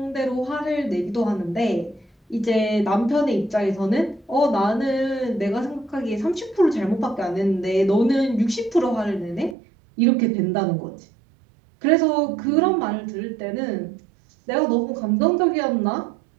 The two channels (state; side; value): drops out; left; at 9.6 s